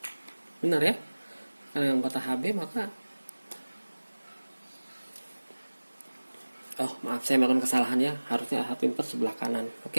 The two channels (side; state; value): both; inverted; correlation -1.00